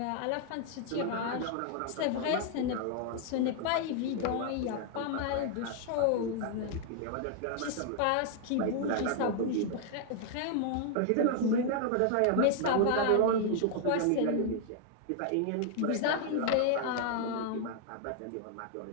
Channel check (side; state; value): both; different; correlation 0.00